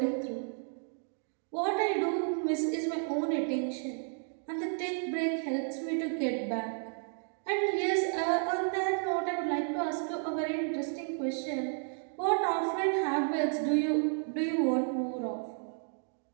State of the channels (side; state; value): left; silent; 56 dB below the other